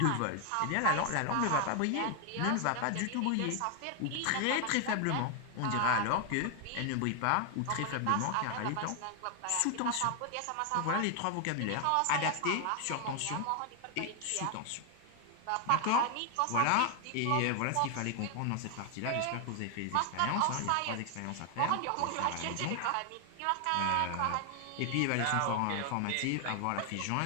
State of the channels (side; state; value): both; different; correlation 0.00